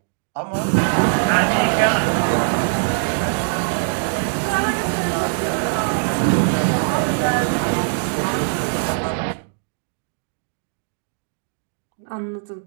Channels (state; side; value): silent; left; digital silence